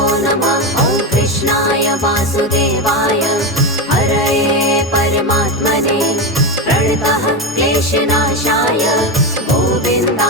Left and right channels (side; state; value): both; normal; correlation 0.15